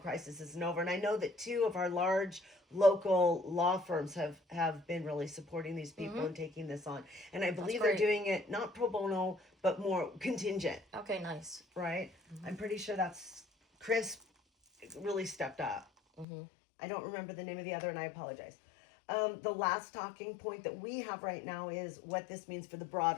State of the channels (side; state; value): right; drops out; at 16.2 s